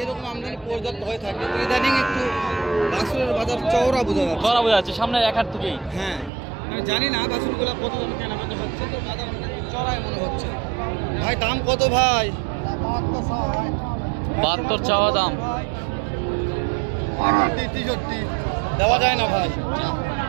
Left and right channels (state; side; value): drops out; left; at 6.3 s